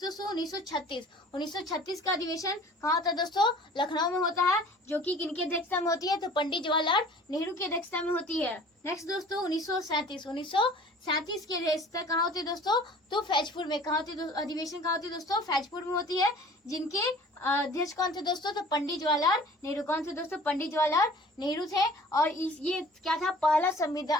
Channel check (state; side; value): normal; both; correlation 0.47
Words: दोस्तों 1936 का अधिवेशन कहाँ होता है दोस्तों, लखनऊ में होता है, जो कि किनकी अध्यक्षता में होती है, तो पंडित जवाहरलाल नेहरू की अध्यक्षता में होती है। नेक्स्ट दोस्तों 1937 की अध्यक्षता कहाँ होती है दोस्तों, तो फैजपुर में। कहाँ होती है अधिवेशन, कहाँ होती है दोस्तों, फैजपुर में होती है, जिनके अध्यक्ष कौन थे दोस्तों, तो पंडित जवाहरलाल नेहरू। कौन थे दोस्तों, पंडित जवाहरलाल नेहरू थे। और ये क्या था, पहला